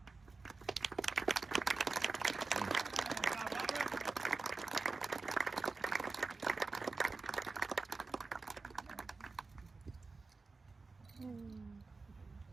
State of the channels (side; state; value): left; quieter; 4.0 dB